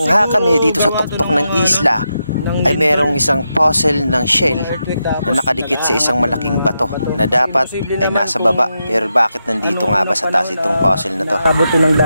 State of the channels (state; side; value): inverted; both; correlation -0.86